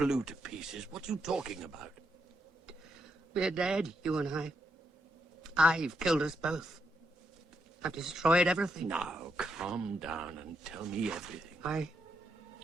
to pieces? What are you talking about? We're dead, you and I. I've killed us both. I've destroyed everything. Now, calm down and tell me everything. I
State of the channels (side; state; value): both; normal; correlation 0.81